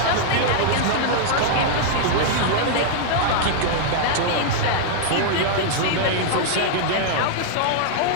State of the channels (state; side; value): different; both; correlation -0.01